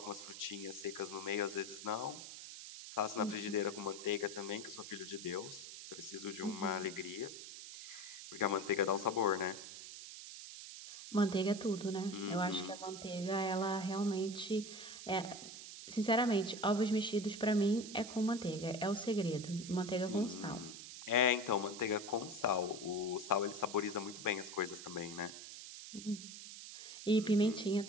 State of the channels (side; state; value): right; noise; hiss, 11 dB below the sound